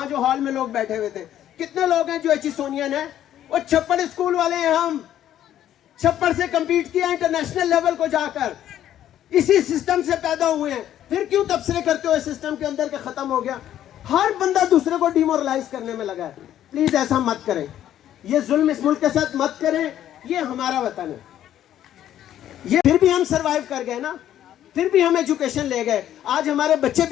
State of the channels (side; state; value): right; quieter; 11.5 dB